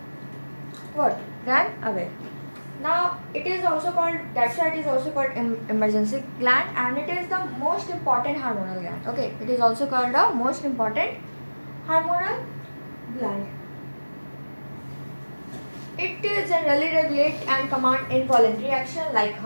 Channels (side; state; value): both; inverted; correlation -1.00